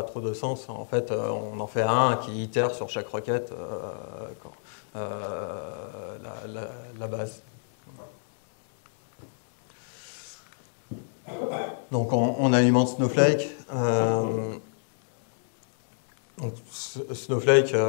trop de sens. En fait, on en fait un qui itère sur chaque requête la base. Donc on alimente Snowflake. Donc, Snowflake,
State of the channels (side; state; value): right; silent; digital silence